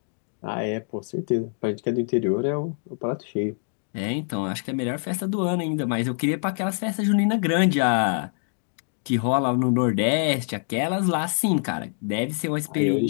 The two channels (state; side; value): silent; right; 62 dB below the other